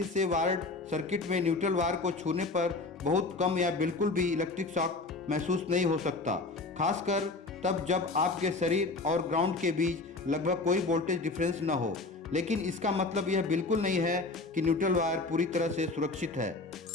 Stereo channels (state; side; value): quieter; right; 3.5 dB